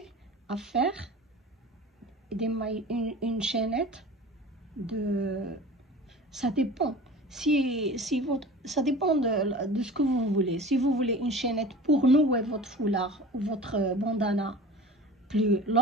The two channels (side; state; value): both; normal; correlation 0.38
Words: à faire des mailles, une chaînette de... Ça dépend. Ça dépend de ce que vous voulez. Si vous voulez une chaînette pour nouer votre foulard ou votre bandana plus